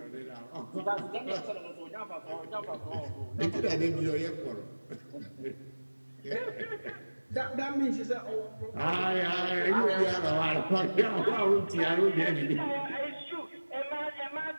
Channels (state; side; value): inverted; both; correlation -1.00